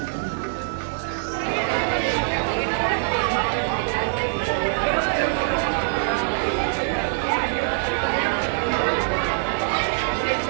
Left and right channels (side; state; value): left; silent; digital silence